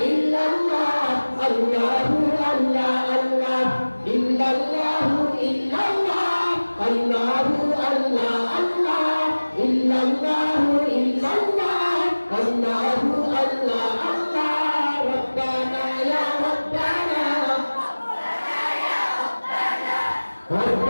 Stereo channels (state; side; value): inverted; both; correlation -1.00